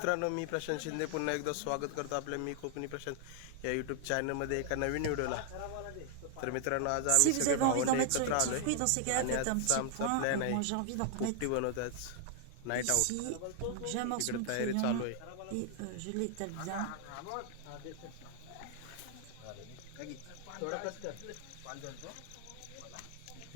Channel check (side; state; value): both; different; correlation 0.00